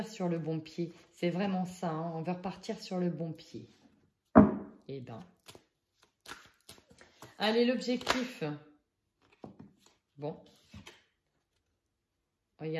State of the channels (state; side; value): identical; both; correlation 1.00